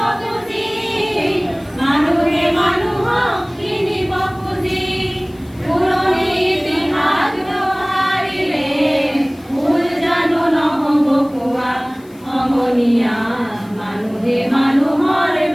খুজি মানুহে মানুহক কিনিব খুজি পুৰণি ইতিহাস দোহাৰিলে ভুল জানো নহ'ব কোৱা সমনীয়া মানুহে মানুহৰ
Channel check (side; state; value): left; noise; hiss, 29 dB below the sound